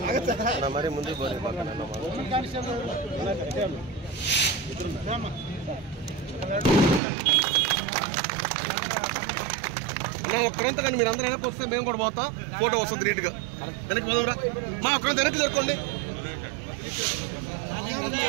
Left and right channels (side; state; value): left; drops out; at 7.0 s